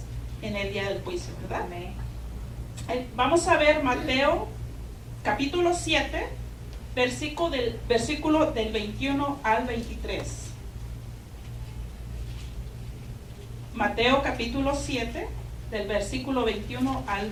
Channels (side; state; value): both; identical; correlation 1.00